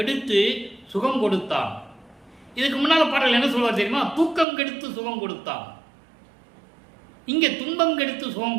சுகம் கொடுத்தான். இதுக்கு முன்னால பாடல் என்ன சொல்வார் தெரியுமா? தூக்கம் கெடுத்து சுகம் கொடுத்தான். இங்கே துன்பம் கெடுத்து சுகம்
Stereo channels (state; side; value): drops out; left; at 4.5 s